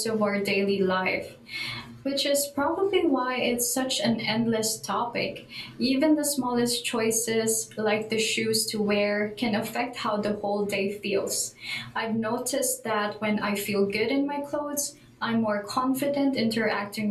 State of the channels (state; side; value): identical; both; correlation 1.00